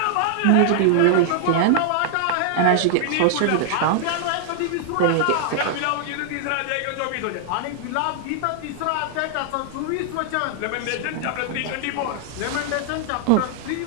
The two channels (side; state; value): both; different; correlation -0.01